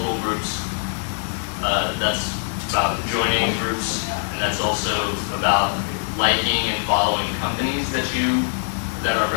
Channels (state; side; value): silent; right; digital silence